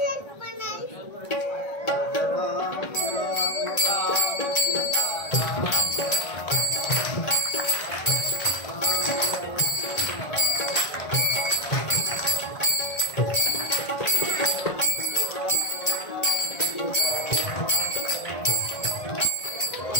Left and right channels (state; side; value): late; right; 1.9 ms